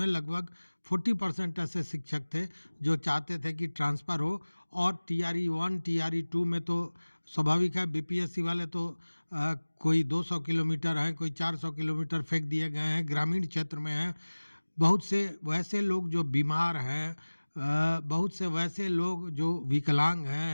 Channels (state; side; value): inverted; both; correlation -1.00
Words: लगभग 40% ऐसे शिक्षक थे जो चाहते थे कि ट्रांसफ़र हो। और टीआरई 1 टीआरई 2 में तो स्वाभाविक है, बीपीएससी वाले तो कोई 200 किलोमीटर हैं, कोई 400 किलोमीटर फेंक दिए गए हैं, ग्रामीण क्षेत्र में हैं। बहुत से वैसे लोग जो बीमार हैं, बहुत से वैसे लोग जो विकलांग